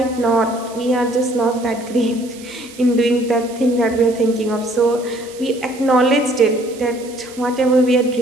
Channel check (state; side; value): noise; right; hiss, 20 dB below the sound